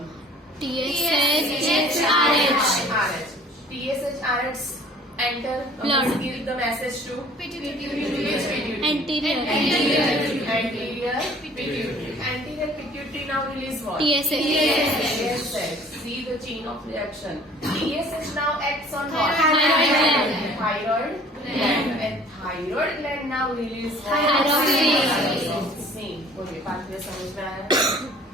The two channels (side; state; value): both; normal; correlation 0.52